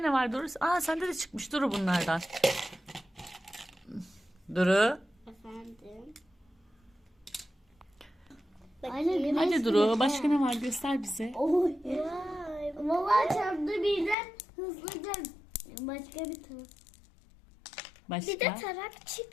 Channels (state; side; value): drops out; right; at 14.2 s